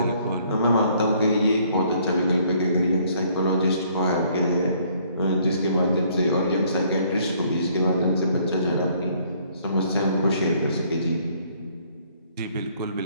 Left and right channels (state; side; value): inverted; both; correlation -0.63